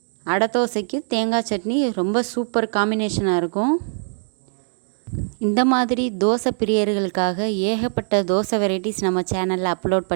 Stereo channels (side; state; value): left; silent; digital silence